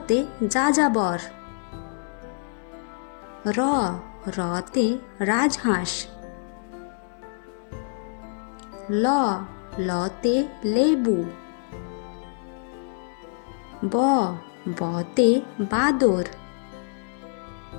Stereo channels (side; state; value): right; silent; digital silence